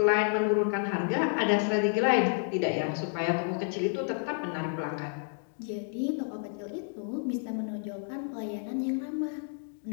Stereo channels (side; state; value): right; silent; 57 dB below the other